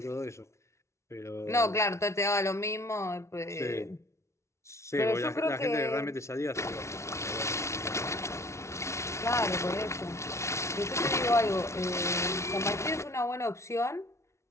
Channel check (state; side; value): late; right; 0.13 ms